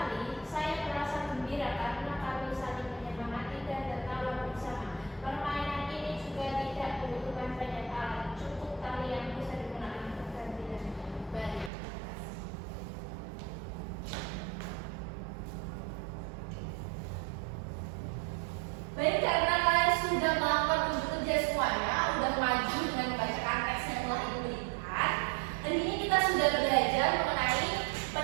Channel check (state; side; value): drops out; left; at 11.7 s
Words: saya merasa gembira karena kami saling menyemangati dan tertawa bersama. Permainan ini juga tidak membutuhkan banyak alat, cukup tali yang bisa digunakan bergantian. Baik, terima kasih. Baik, karena kalian sudah melakukan unjuk kerja semuanya, sudah maju dengan membacakan teks yang telah ibu berikan. Hari ini kita sudah belajar mengenai